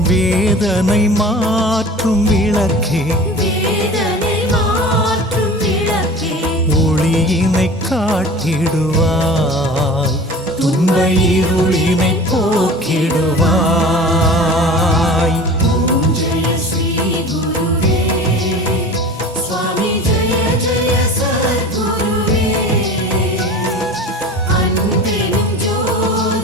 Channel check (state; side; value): normal; both; correlation 0.38